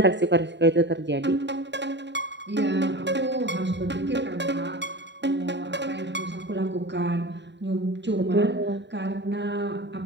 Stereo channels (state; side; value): late; left; 0.52 ms